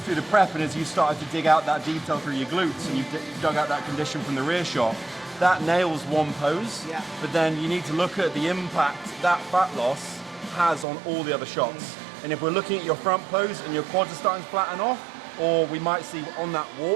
through the prep and as you started to dig out that detail through your glutes and you've dug out that condition from the rear shot, that nails one pose, but then you need to look at the impact that fat loss has on all the other shots. And if we're looking at your front pose and your quads are starting to flatten off, or we might see on that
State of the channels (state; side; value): drops out; left; at 10.9 s